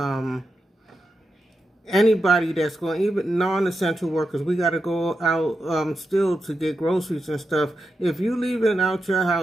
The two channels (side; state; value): both; normal; correlation 0.87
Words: anybody that's going, even non-essential workers, we got to go out still to get groceries and stuff. If you leaving out your